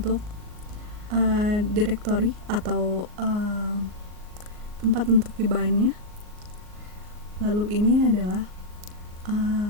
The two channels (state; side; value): late; left; 38 ms